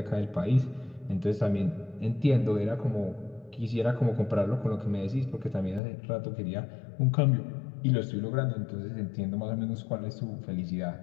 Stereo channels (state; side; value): drops out; right; at 5.8 s